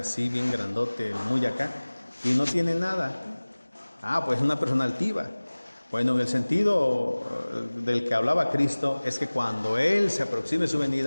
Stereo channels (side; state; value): both; inverted; correlation -1.00